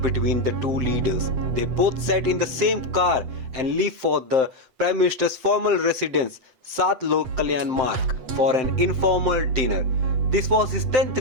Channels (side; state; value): left; late; 7.7 ms